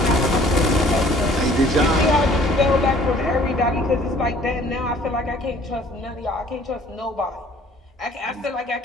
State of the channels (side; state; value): both; normal; correlation 0.55